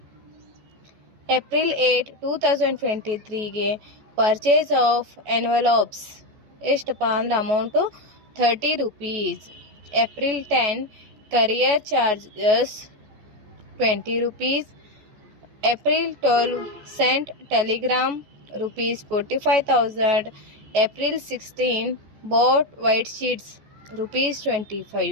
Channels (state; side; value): late; left; 14 ms